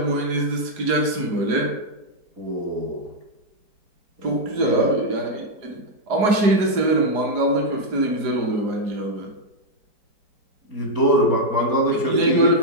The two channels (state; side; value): late; left; 4.8 ms